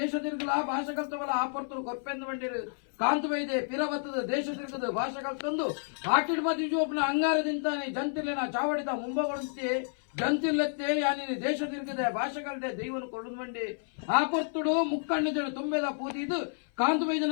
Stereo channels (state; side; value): silent; right; 58 dB below the other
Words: ತಿರುಗಲ ಭಾಷೆ ಕಲ್ತವಲ್ಲ ಆ ಪರ್ತರು ಕೊರ್ಪೆಂದು ಬಂಡಿರು ಕಾಂತ ವೈದ್ಯ ಪಿರವತ್ತದ ದೇಶ ತಿರುಗದ ಭಾಷೆ ಕಲ್ತಂದು ಆಟಿಡ್ ಮತಿ ಜೋಪನ ಅಂಗಾರದಿಂತಾನೆ ಜಂತಿರ್ಲಿನ ಚಾವಡಿದ ಮುಂಬಗೊಳುತ್ತೆ ಜಂತಿರ್ಲೆತ್ತೆ ಯಾನಿ ದೇಶ ತಿರುಗದೆ ಭಾಷೆ ಕಲ್ದೆ ದೈವನು ಕೊರಡು ಬಂಡಿ ಆ ಪರ್ತುಡು ಮುಕ್ಕಣ್ಣಿದಳು ತುಂಬೆದ ಪೂತಿದು ಕಾಂತ